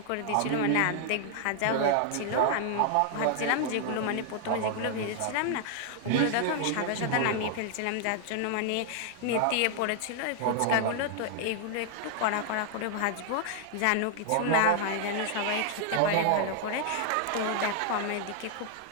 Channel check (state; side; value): different; both; correlation 0.00